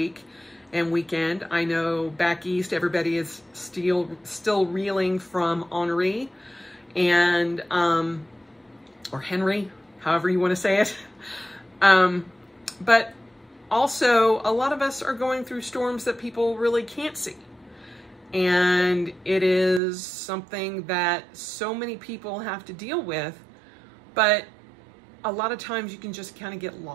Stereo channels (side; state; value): left; drops out; at 19.8 s